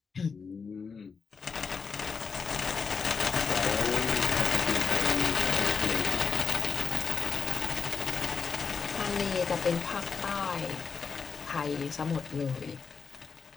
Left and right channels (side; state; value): right; quieter; 5.4 dB